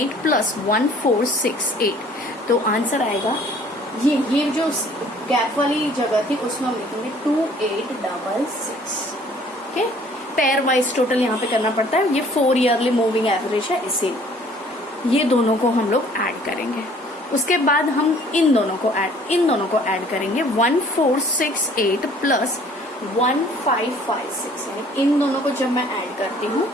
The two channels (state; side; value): normal; both; correlation 0.55